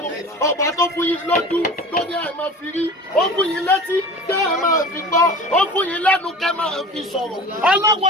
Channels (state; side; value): normal; both; correlation 0.37